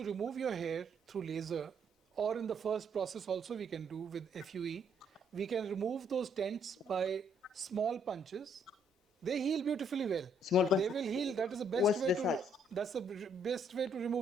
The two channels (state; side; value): normal; both; correlation 0.69